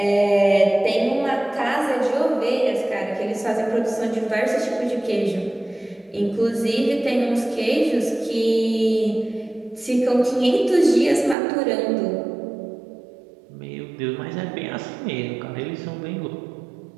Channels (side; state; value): left; drops out; at 11.4 s